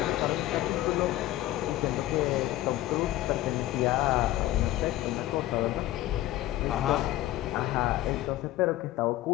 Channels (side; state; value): right; quieter; 15.4 dB